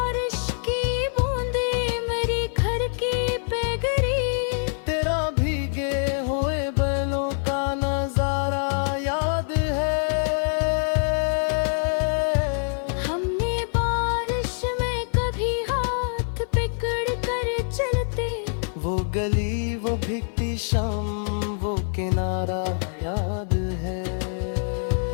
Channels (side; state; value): right; silent; 56 dB below the other